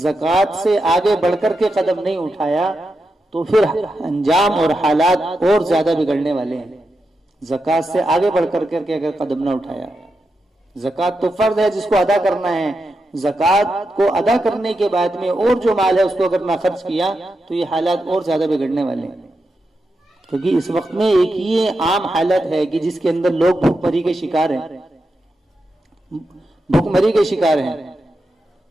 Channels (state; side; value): normal; both; correlation 0.87